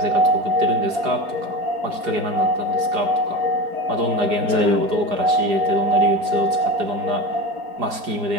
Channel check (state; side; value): late; left; 4.8 ms